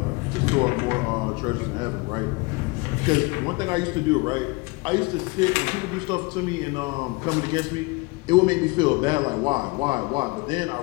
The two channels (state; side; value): quieter; right; 26.1 dB